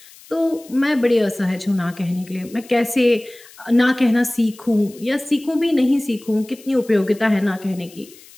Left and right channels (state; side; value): noise; left; hiss, 23 dB below the sound